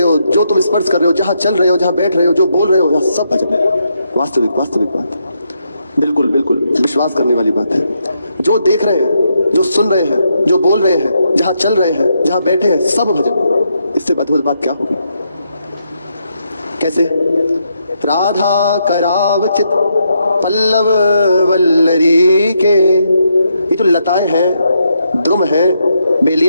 हो, जो तुम स्पर्श कर रहे हो, जहां चल रहे हो, जहां बैठ रहे हो, जो बोल रहे हो, यहाँ सब भजन है। वास्तविक वास्तविक बात, बिल्कुल बिल्कुल विश्वास करने वाली बात है। जो देख रहे हैं, जो सुन रहे हैं, जो बोल रहे हैं, जहां चल रहे हैं, जहां बैठे हैं, सब भजन है। इससे अद्भुत बात क्या होगी? कैसे? राधा करावचित पल्लव वल्लरी के, ये जो लताएं हैं, द्रुम है,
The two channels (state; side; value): inverted; both; correlation -0.79